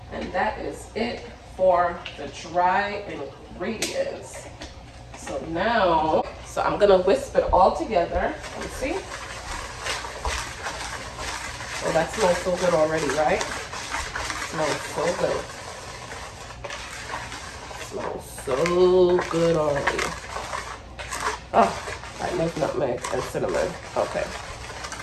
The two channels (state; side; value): identical; both; correlation 1.00